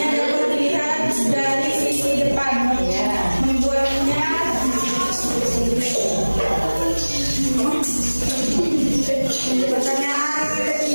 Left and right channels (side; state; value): both; inverted; correlation -1.00